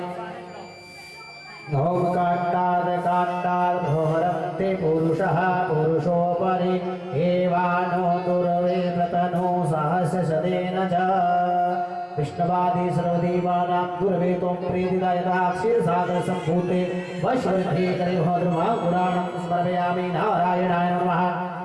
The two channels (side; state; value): both; identical; correlation 1.00